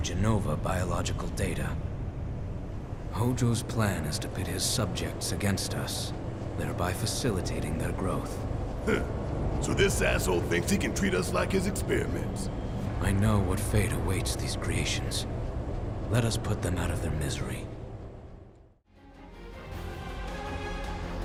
Genova biological data. Hojo's plan is to pit his subjects against us, thereby facilitating their growth. So this asshole thinks he can treat us like his experiments. I know what fate awaits these creations. Let us put them out of their misery.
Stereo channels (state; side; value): identical; both; correlation 1.00